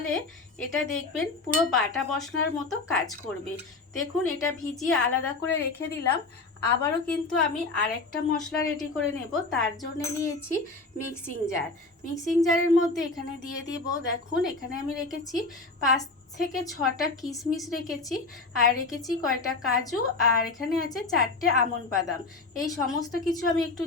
এটা দেখবেন পুরো বাটা মশলার মতো কাজ করবে। দেখুন এটা ভিজিয়ে আলাদা করে রেখে দিলাম। আবারও কিন্তু আমি আরেকটা মশলা রেডি করে নেব। তার জন্য নিয়েছি মিক্সিং জার। মিক্সিং জারের মধ্যে এখানে দিয়ে দিব, দেখুন এখানে আমি রেখেছি 5 থেকে 6টা কিশমিশ রেখেছি, আর রেখেছি কয়টা কাজু, আর এখানে আছে 4টে আমন্ড বাদাম। এই সমস্ত কিছু আমি একটু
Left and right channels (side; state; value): right; quieter; 3.6 dB